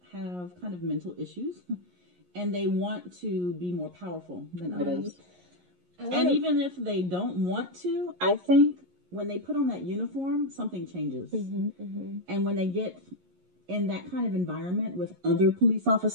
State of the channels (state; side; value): late; left; 11 ms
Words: have kind of mental issues and they want to be more powerful than others. And even if they don't want to, I think when they put on that uniform, something changes. And when they get in that kind of environment with other police